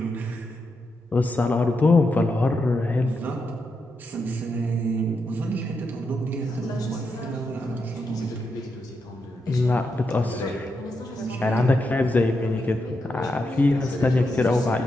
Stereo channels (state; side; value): normal; both; correlation 0.84